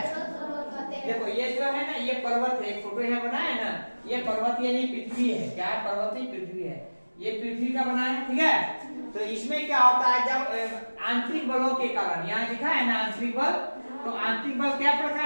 देखो ये जो है ना, ये पर्वत है, एक फोटो यहाँ बना है ना, ये पर्वत ये नहीं पृथ्वी है, क्या है, पर्वत नहीं पृथ्वी है, ये पृथ्वी का बना है, ठीक है। तो इसमें क्या होता है, जब आंतरिक बलों के कारण, यहाँ लिखा है ना आंतरिक बल, तो आंतरिक बल क्या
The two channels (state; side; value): inverted; both; correlation -1.00